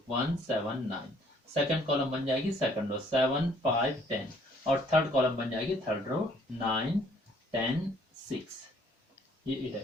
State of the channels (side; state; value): both; normal; correlation 0.61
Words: 1 7 9, सेकंड कॉलम बन जाएगी सेकंड रो 7 5 10 और थर्ड कॉलम बन जाएगी थर्ड रो 9 10 6। ये ए